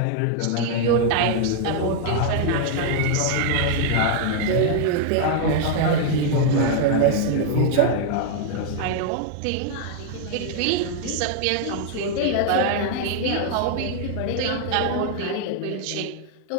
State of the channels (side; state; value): both; different; correlation 0.00